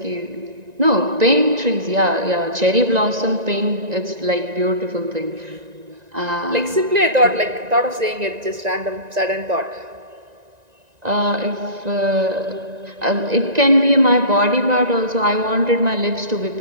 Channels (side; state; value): left; late; 1.9 ms